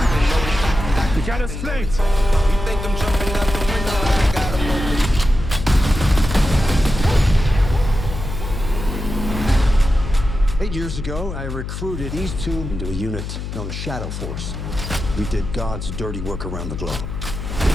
You got us flanked. You think I'm jumping out the window? I got 'em open. 8 years ago, I recruited these two into a unit known as Shadow Force. We did God's dirty work around the globe.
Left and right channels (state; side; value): noise; left; hum, 6 dB below the sound